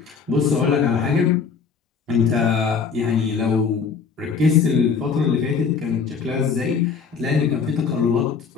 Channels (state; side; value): quieter; right; 5.8 dB